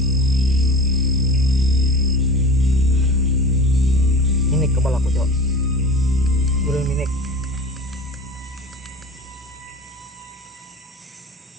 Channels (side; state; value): both; normal; correlation 0.36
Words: Ini kepala aku cok. Belum minik.